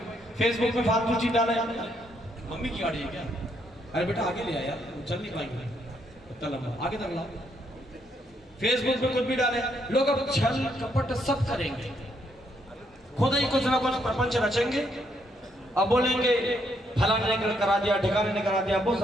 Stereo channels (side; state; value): both; normal; correlation 0.74